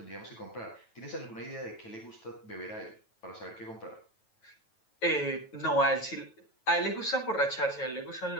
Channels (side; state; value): right; late; 9.1 ms